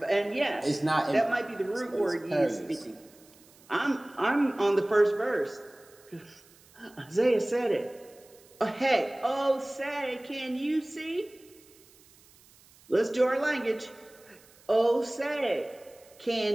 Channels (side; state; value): right; noise; hiss, 27 dB below the sound